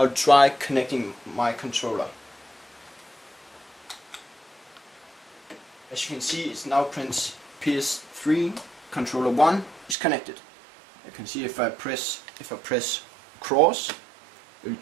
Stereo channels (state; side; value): drops out; left; at 10.0 s